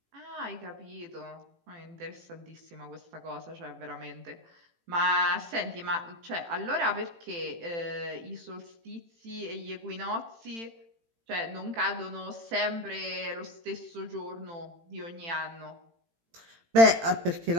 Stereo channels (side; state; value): left; late; 18 ms